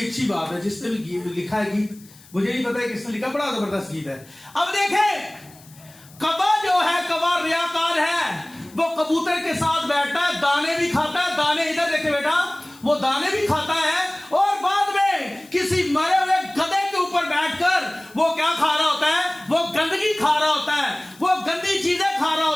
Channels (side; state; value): left; noise; hiss, 24 dB below the sound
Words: बात है। जिसने भी लिखा है गीत, मुझे नहीं पता है किसने लिखा, बड़ा जबरदस्त गीत है। अब देखें, कौवा जो है, कौवा रियाकार है, वो कबूतर के साथ बैठता है, दाने भी खाता है, दाने इधर देखे बेटा, वो दाने भी खाता है और बाद में किसी मरे हुए गधे के ऊपर बैठकर वो क्या खा रहा होता है? वो गंदगी खा रहा होता है, वो गंदी चीजें खा रहा